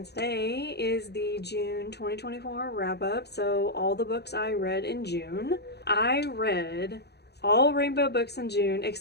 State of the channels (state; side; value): late; right; 0.48 ms